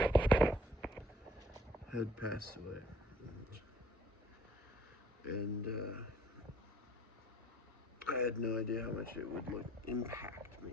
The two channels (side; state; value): both; normal; correlation 0.58